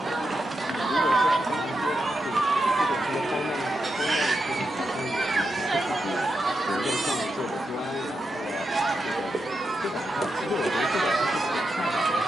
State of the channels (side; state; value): both; normal; correlation 0.86